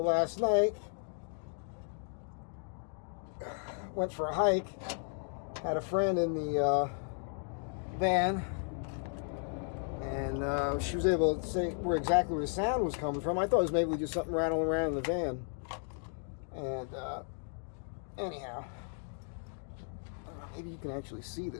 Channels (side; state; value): right; silent; 55 dB below the other